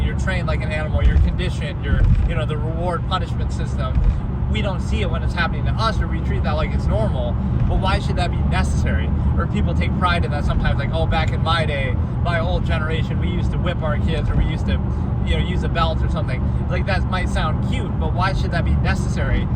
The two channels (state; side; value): identical; both; correlation 1.00